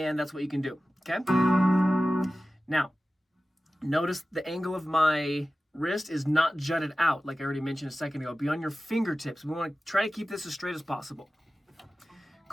that's what you can do, okay? Now, notice the angle of my wrist is not jutted out, like I already mentioned a second ago. Be on your fingertips. We want to try to keep this as straight as possible.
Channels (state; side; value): normal; both; correlation 0.95